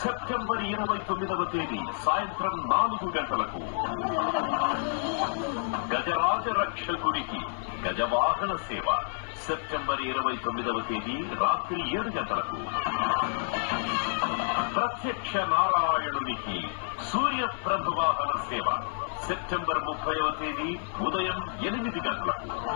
సెప్టెంబర్ 29వ తేదీ సాయంత్రం 4 గజరాజ రక్షకుడికి గజవాహన సేవ. సెప్టెంబర్ 29వ తేదీ రాత్రి 7 ప్రత్యక్ష నారాయణునికి సూర్యప్రభ వాహన సేవ. సెప్టెంబర్ 30వ తేదీ ఉదయం 8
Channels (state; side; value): silent; right; digital silence